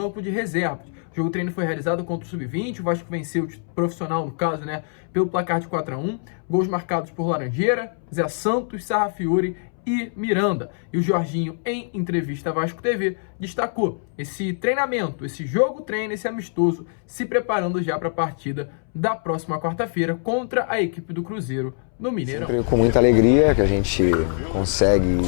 de reservas. O jogo-treino foi realizado contra o Sub-20, o Vasco venceu o profissional, no caso, né, pelo placar de 4-1. Gols marcados por Laranjeira, Zé Santos, Sarrafiori e Miranda. E o Jorginho, em entrevista à Vasco TV, destacou esse treinamento, esse jogo-treino, esse amistoso, se preparando já para a partida da próxima quarta-feira contra a equipe do Cruzeiro no Mineirão. Sempre com muita alegria que a gente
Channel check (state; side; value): silent; right; 63 dB below the other